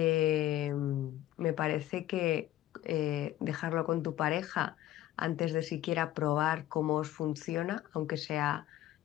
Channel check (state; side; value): quieter; right; 14.1 dB